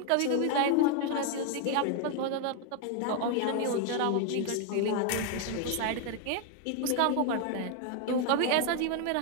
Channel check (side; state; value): both; different; correlation 0.01